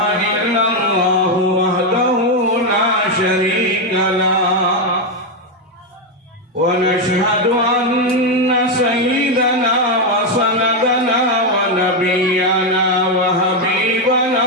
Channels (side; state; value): both; normal; correlation 0.05